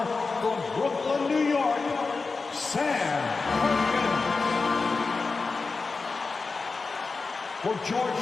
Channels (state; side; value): quieter; right; 4.2 dB